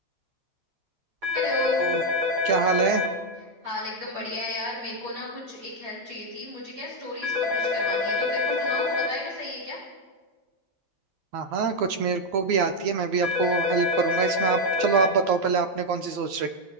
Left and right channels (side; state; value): left; late; 11 ms